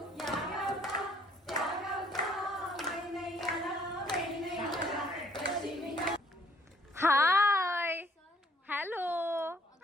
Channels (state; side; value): normal; both; correlation 0.63